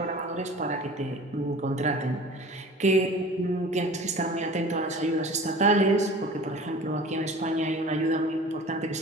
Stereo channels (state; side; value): normal; both; correlation 0.41